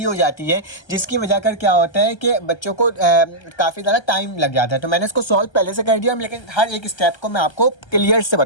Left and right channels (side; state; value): right; late; 1.3 ms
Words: हो जाती है, जिसकी वजह कर क्या होता है कि बच्चों को काफ़ी ज़्यादा टाइम लग जाता है। तो मैंने इसको सॉल्व पहले से कर दिया, लेकिन हर एक स्टेप को मैं आपको क्लियर से